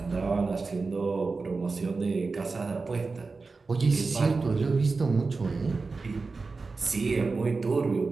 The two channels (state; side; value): quieter; left; 4.1 dB